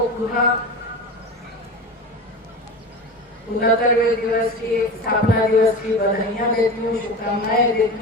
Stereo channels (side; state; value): both; normal; correlation 0.29